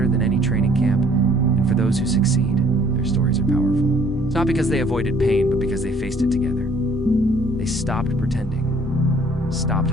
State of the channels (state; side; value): normal; both; correlation 0.59